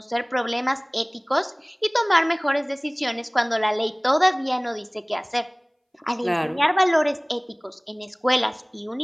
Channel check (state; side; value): identical; both; correlation 1.00